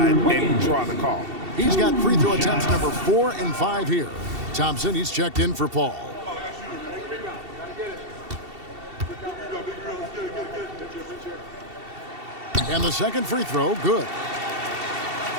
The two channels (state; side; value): late; left; 2.7 ms